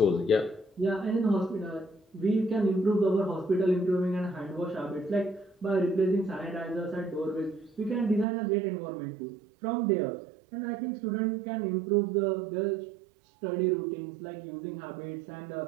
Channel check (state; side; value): drops out; left; at 8.2 s